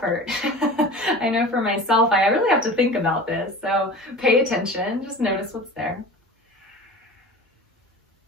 I know for myself, I really have to think about this. So pay attention, just notice what's there.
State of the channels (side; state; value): both; normal; correlation 0.36